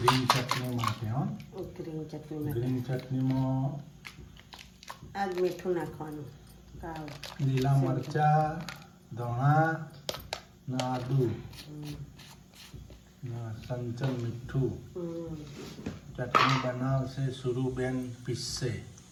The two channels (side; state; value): both; identical; correlation 1.00